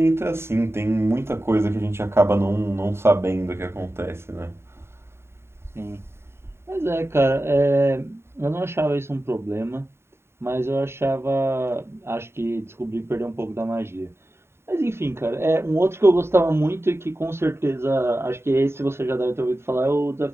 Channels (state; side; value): late; left; 0.12 ms